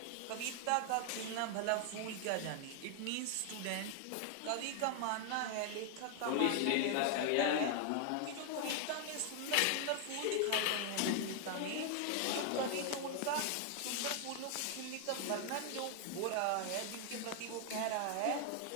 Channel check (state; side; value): different; both; correlation 0.00